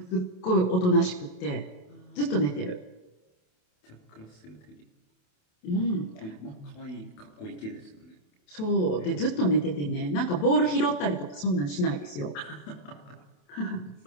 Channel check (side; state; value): right; late; 28 ms